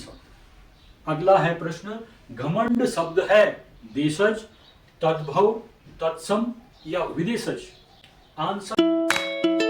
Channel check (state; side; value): identical; both; correlation 1.00